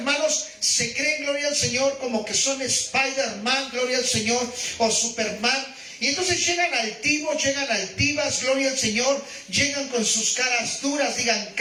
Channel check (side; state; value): both; identical; correlation 1.00